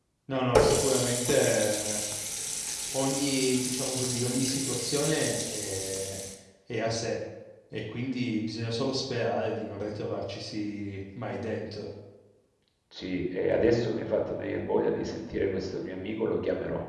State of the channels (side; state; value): both; identical; correlation 1.00